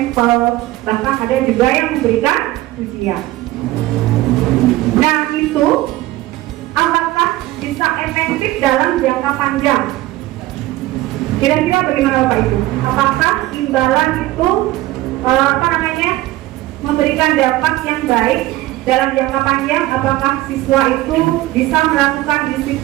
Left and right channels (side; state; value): left; quieter; 17.1 dB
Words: bahkan ada juga yang memberikan ujian. Nah, itu apakah bisa efektif dalam jangka panjang? Kira-kira bagaimana Bapak Ibu? Apakah imbalan itu memberikan dampak yang baik dalam jangka panjang? Apakah siswa itu bisa melakukan